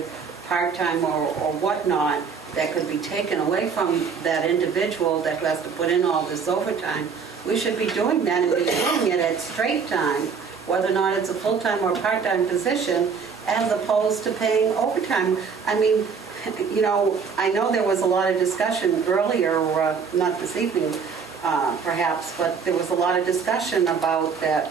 part-time or whatnot, that could be taken away from that individual that has to put in all this overtime, we should be doing that and be doing it at straight time, whether or not it's a full-time or part-time position, as opposed to paying overtime. I mean, I know there was a lot of discussion earlier, not this evening perhaps, but there was a lot of discussion about that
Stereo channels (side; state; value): left; quieter; 5.8 dB